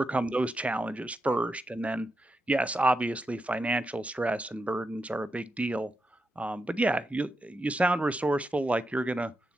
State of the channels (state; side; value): normal; both; correlation 0.86